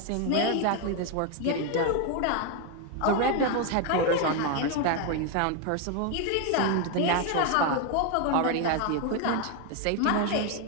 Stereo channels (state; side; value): different; both; correlation 0.01